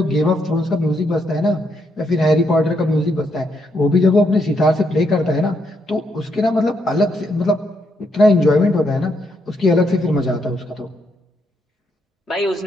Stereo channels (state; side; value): normal; both; correlation 0.77